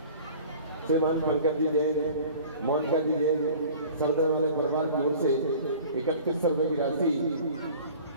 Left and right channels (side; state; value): both; inverted; correlation -0.44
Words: श्रीमान पंकज जी जैन, मोनिका जी जैन, सरदार वाले परिवार की ओर से 3100 रुपये की राशि